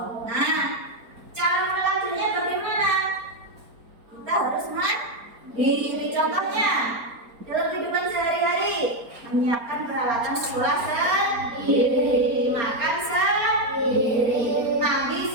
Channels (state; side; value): late; left; 4.3 ms